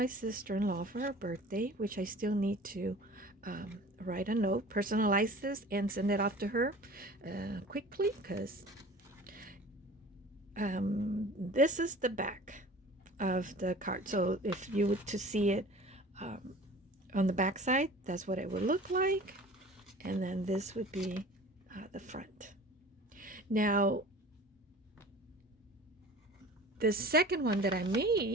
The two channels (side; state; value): both; normal; correlation 0.43